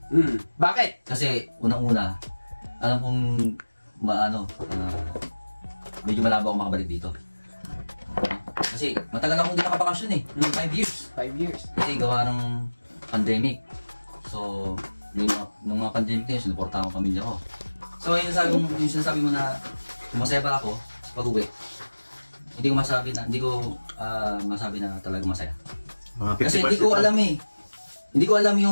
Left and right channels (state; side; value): inverted; both; correlation -1.00